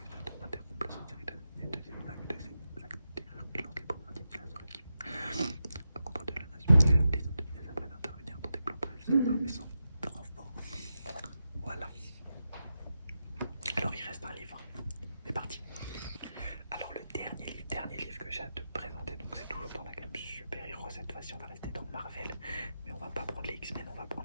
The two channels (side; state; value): both; inverted; correlation -0.89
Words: interrompre la série de deuxième vague de ces actes de terreur et lance les préparatifs de l'assaut qui à contre de la nation. Les Indonésiens s'apprêtent à intervenir dans des plans prévus sans armes et sans renfort. Voilà. Alors il reste un livre. C'est parti. Alors le dernier livre que j'ai à te présenter, donc c'est toujours dans la gamme super-héros. Cette fois-ci on va rester dans Marvel, mais on va pas prendre les X-Men, on va